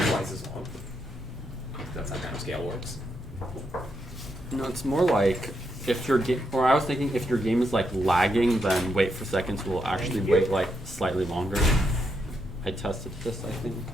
twice as long. That's how timescale works. No, it's more like if your game, or I was thinking if your game is like lagging, then wait for seconds will actually wait like slightly longer. I tested this, I think.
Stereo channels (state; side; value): normal; both; correlation 0.81